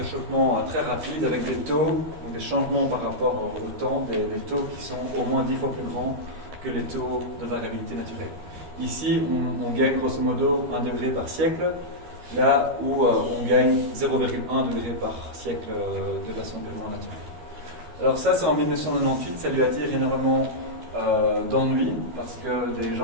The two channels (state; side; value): late; left; 12 ms